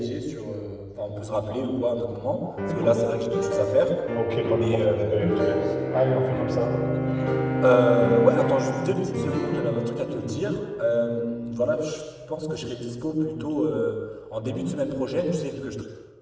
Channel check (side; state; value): both; identical; correlation 1.00